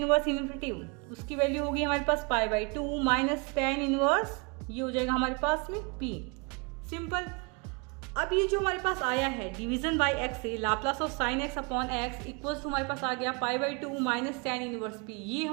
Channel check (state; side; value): quieter; left; 31.8 dB